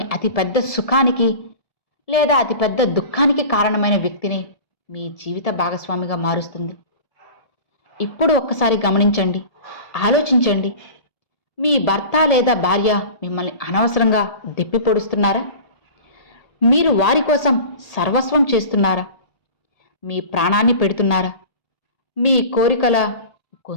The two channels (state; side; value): late; right; 1.7 ms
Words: అతిపెద్ద సుఖానికి లేదా అతిపెద్ద దుఃఖానికి కారణమైన వ్యక్తిని మీ జీవిత భాగస్వామిగా మారుస్తుంది. ఇప్పుడు ఒక్కసారి గమనించండి, ఆలోచించండి. మీ భర్త లేదా భార్య మిమ్మల్ని అనవసరంగా దెప్పి పొడుస్తున్నారా? మీరు వారి కోసం సర్వస్వం చేస్తున్నారా? మీ ప్రాణాన్ని పెడుతున్నారా? మీ కోరికల